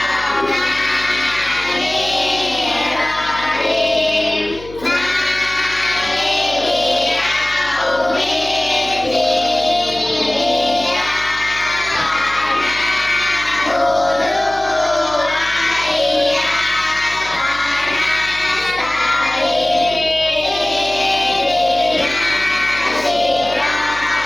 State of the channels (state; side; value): noise; left; hum, 18 dB below the sound